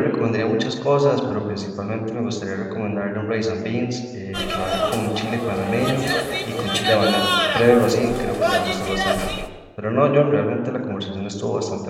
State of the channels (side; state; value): both; identical; correlation 1.00